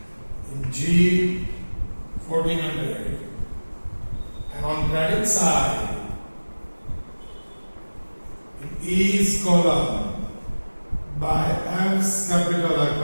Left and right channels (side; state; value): both; inverted; correlation -1.00